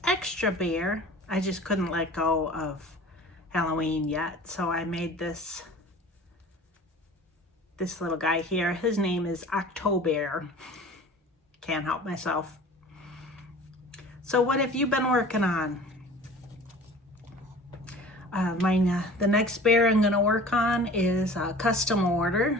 extra bear. I just couldn't let go of Halloween yet, so I made this little guy here. His name is October. Can't help myself. So what have you been working on? The next bear I'm going to work on is a custom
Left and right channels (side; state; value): both; normal; correlation 0.43